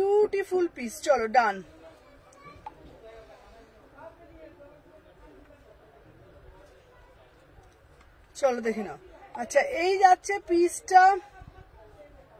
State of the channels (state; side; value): identical; both; correlation 1.00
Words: পিস। চলো ডান। চলো দেখে নাও। আচ্ছা, এই যাচ্ছে পিসটা,